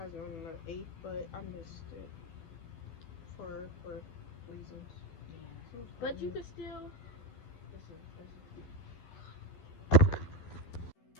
on the 8th, but I missed it. For reasons. Yeah. But you could still...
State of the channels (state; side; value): late; right; 12 ms